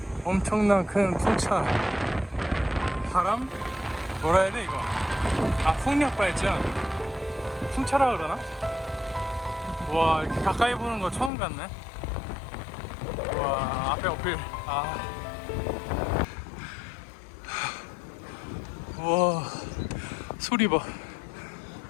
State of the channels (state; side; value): drops out; right; at 11.3 s